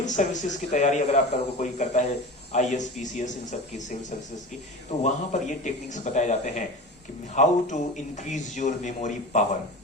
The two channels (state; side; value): normal; both; correlation 0.31